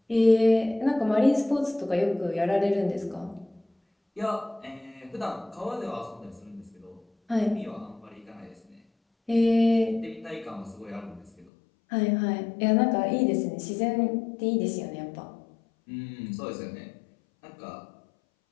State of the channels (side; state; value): right; drops out; at 11.5 s